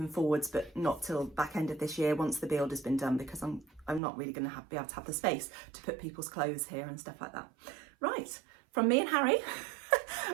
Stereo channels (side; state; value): left; drops out; at 4.0 s